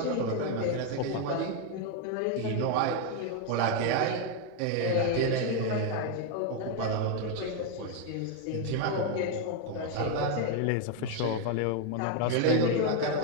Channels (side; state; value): both; different; correlation 0.01